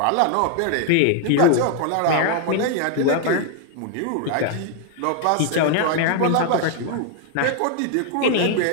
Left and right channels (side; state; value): both; different; correlation 0.00